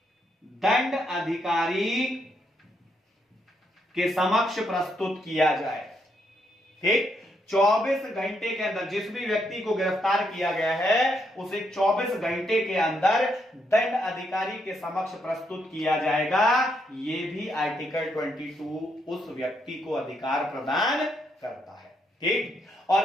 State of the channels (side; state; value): both; normal; correlation 0.77